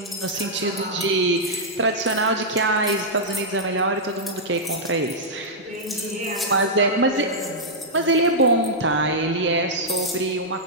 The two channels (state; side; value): normal; both; correlation -0.08